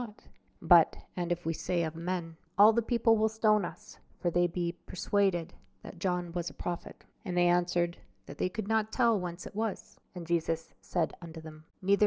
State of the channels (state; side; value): identical; both; correlation 1.00